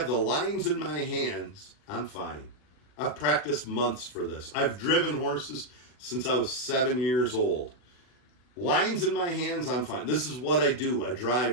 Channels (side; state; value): right; late; 40 ms